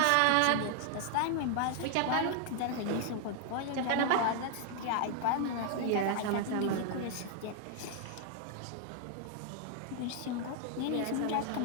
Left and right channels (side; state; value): both; different; correlation 0.00